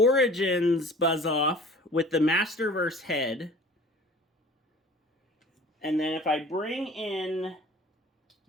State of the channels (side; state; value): both; normal; correlation 0.46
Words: Buzz-Off with the Masterverse head. And then if I bring in